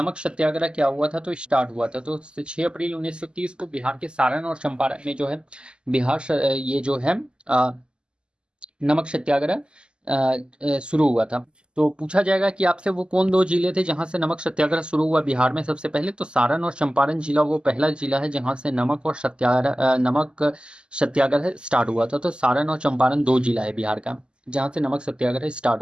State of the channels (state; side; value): late; left; 0.051 ms